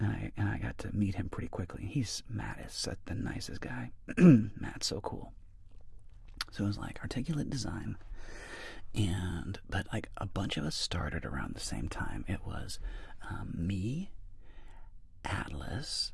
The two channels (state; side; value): identical; both; correlation 1.00